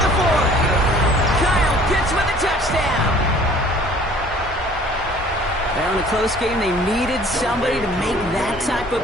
Well, in a close game, they needed somebody to make that type of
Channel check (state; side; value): normal; both; correlation 0.52